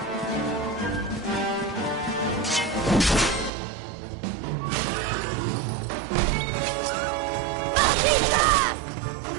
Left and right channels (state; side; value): drops out; left; at 3.5 s